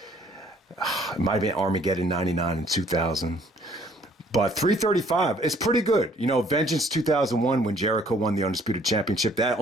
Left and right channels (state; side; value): normal; both; correlation 0.60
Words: it might have been Armageddon 99 and 2000. But 335 is pretty good. You know, Vengeance 2001, when Jericho won the Undisputed Championship, that